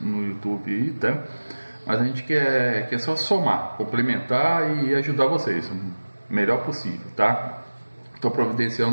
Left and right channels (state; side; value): inverted; both; correlation -1.00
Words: YouTube aí, tá? Mas a gente quer só somar, complementar e ajudar vocês o melhor possível, tá? Estou